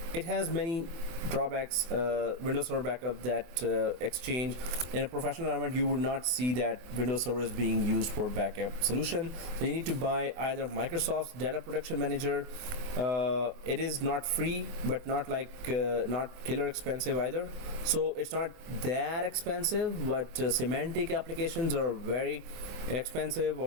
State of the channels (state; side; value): late; left; 24 ms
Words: it has many drawbacks. Windows Server backup, that Exchange in a professional environment, you would not see that Windows Server is being used for backup solution. So you need to buy either Microsoft's Data Protection Manager. It is not free, but not like not killer expensive either. So it's not that expensive, but semantic applications are very expensive,